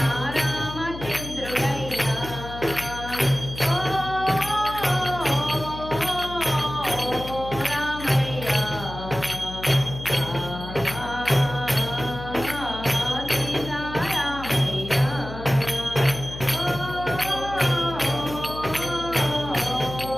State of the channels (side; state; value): left; noise; hum, 11 dB below the sound